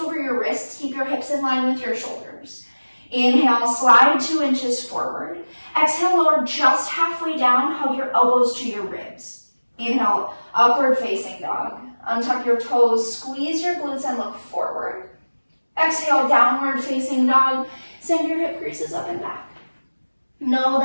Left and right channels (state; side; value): inverted; both; correlation -1.00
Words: your wrists. Keep your hips in line with your shoulders. Inhale, slide 2 inches forward. Exhale, lower just halfway down. Hug your elbows to your ribs. Inhale, upward facing dog. Untuck your toes, squeeze your glutes and look forward. Exhale, downward facing dog. Send your hip creases up and back. Know